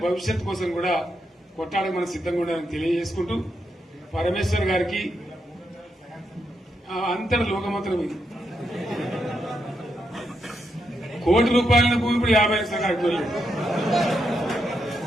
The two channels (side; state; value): both; normal; correlation 0.82